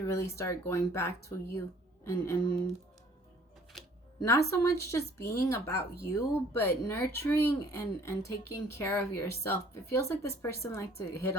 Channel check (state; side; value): normal; both; correlation 0.56